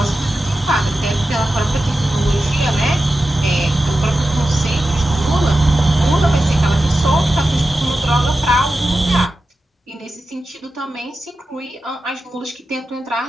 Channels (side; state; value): both; normal; correlation 0.92